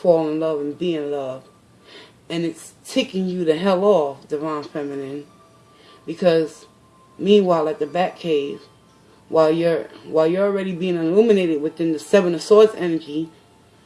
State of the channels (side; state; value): both; identical; correlation 1.00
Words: in love and be in love. And it's ticking you the hell off, Divine Feminine, because meanwhile at the Batcave, while you're already being illuminated within the Seven of Swords energy,